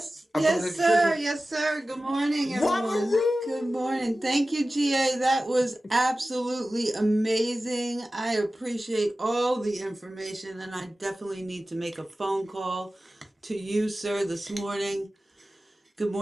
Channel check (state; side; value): normal; both; correlation 0.95